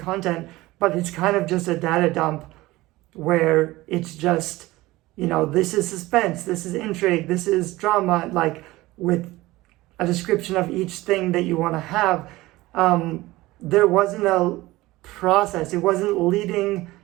but it's kind of just a data dump where it's just, this is suspense, this is intrigue, this is drama, like with a description of each thing that you want to have. There wasn't a process. It wasn't leading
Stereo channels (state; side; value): quieter; left; 18.9 dB